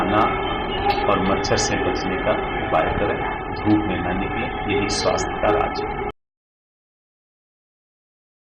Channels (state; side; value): identical; both; correlation 1.00